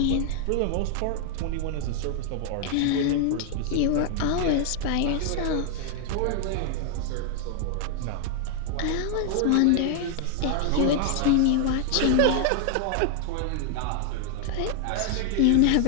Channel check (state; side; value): different; both; correlation 0.00